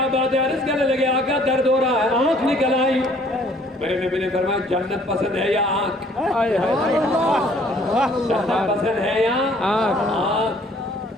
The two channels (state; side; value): normal; both; correlation 0.58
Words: بات ہے، عرض کرنے لگے آقا درد ہو رہا ہے، آنکھ نکل آئی۔ میرے نبی نے فرمایا جنت پسند ہے یا آنکھ؟ جنت پسند ہے یا